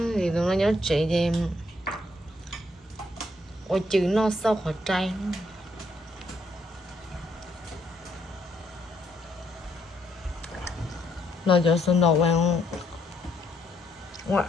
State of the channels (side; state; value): both; normal; correlation 0.73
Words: thì tụi nó nhớ chị thì ôi chữ nó sao khỏi chay nó cho xuân đầu vào ngoài